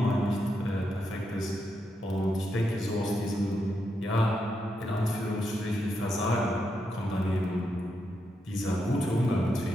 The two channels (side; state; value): both; normal; correlation 0.83